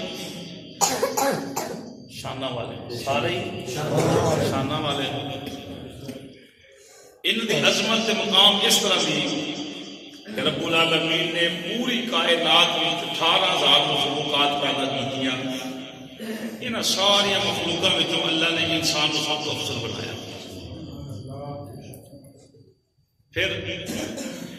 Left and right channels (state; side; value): identical; both; correlation 1.00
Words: شانہ والے، سارے شانہ والے۔ ان کی عظمت مقام اس طرح بھی کہ رب العالمین نے پوری کائنات میں 18,000 مخلوقات پیدا کی، ان ساری مخلوقات میں اللہ نے انسان کو سب کو افضل بنایا۔ پھر